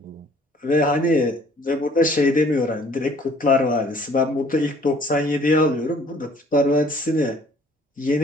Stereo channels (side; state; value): both; normal; correlation 0.57